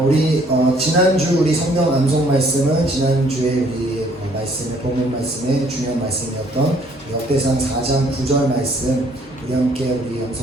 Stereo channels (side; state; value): both; normal; correlation 0.62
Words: 우리 지난주 우리 성경 암송 말씀은 지난주에 우리 말씀의 본문 말씀의 중요한 말씀이었던 역대상 4장 9절 말씀 우리 함께 우리